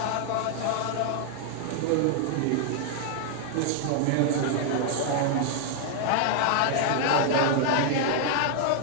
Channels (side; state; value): both; different; correlation 0.00